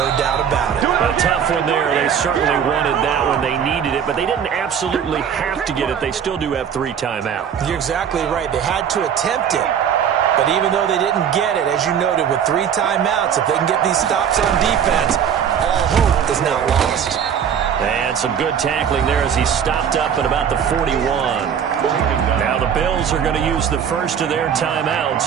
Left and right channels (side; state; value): left; quieter; 8.1 dB